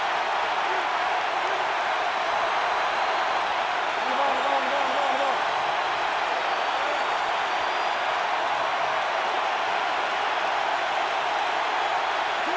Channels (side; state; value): both; identical; correlation 1.00